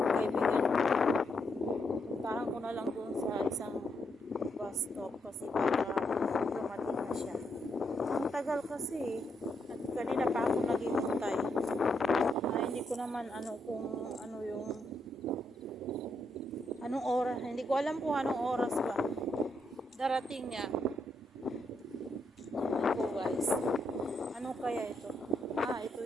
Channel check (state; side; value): normal; both; correlation 0.79